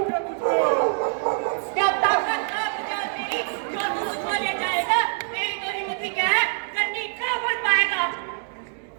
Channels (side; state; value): left; silent; digital silence